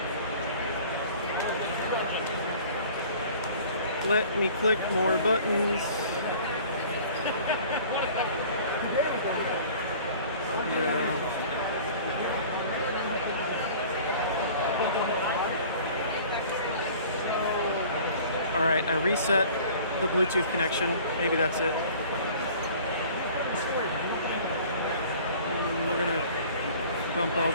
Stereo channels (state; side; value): inverted; both; correlation -0.47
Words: Let me click more buttons. Alright, I reset the Bluetooth connection. Maybe that's it. We're gonna bump all